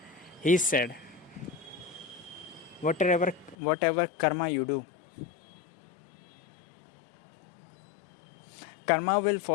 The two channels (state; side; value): drops out; right; at 3.6 s